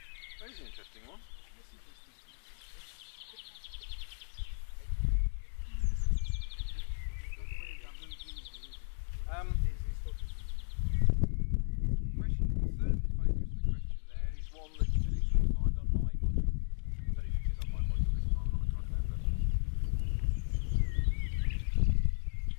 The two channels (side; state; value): right; silent; digital silence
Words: That is an interesting one. The third focus of the question there is one that you can easily find on my module.